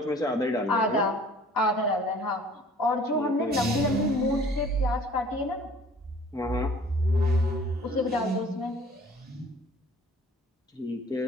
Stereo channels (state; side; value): normal; both; correlation 0.51